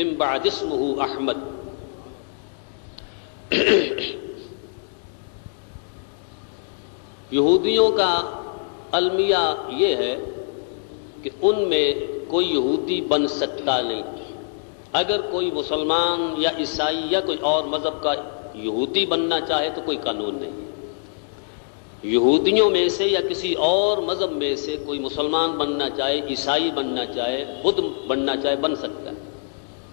بعد اسمہ احمد. یہودیوں کا المیہ یہ ہے کہ ان میں کوئی یہودی بن سکتا نہیں. اگر کوئی مسلمان یا عیسائی یا کوئی اور مذہب کا یہودی بننا چاہے تو کوئی قانون نہیں. یہودیوں میں سے یا کسی اور مذہب میں سے کوئی مسلمان بننا چاہے، عیسائی بننا چاہے، بدھ بننا چاہے، بن سکتا ہے.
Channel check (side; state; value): right; silent; digital silence